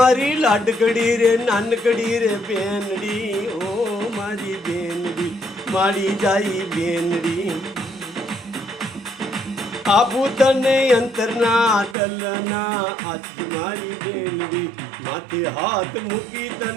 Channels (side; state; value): left; drops out; at 12.0 s